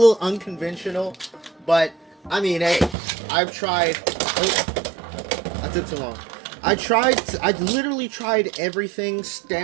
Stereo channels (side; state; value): left; drops out; at 3.0 s